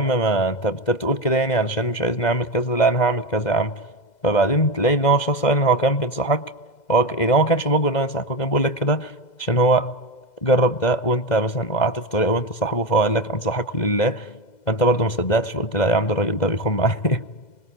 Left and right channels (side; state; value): right; late; 2.0 ms